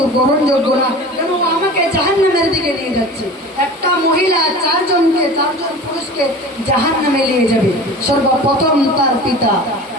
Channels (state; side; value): normal; both; correlation 0.37